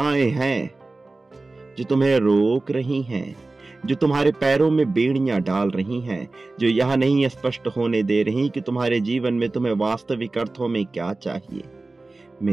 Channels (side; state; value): left; quieter; 3.3 dB